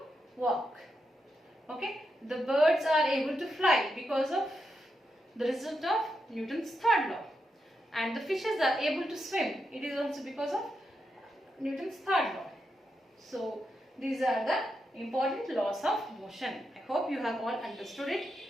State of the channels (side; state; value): both; normal; correlation 0.84